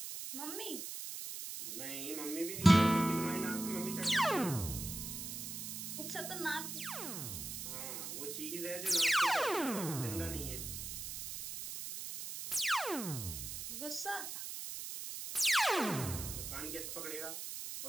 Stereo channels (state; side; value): noise; right; hiss, 6 dB below the sound